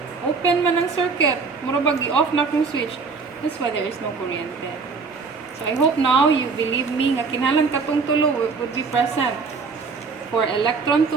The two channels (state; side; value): quieter; left; 4.8 dB